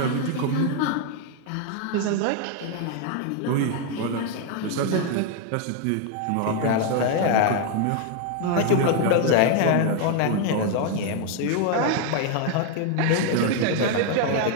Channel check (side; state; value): both; different; correlation 0.01